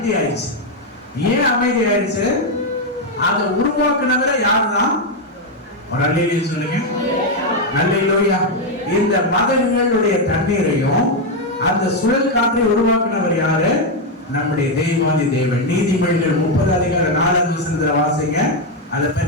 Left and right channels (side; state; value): both; normal; correlation 0.04